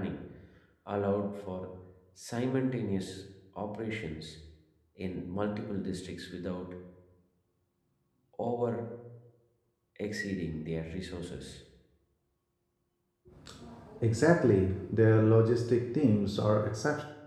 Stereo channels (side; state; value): both; identical; correlation 1.00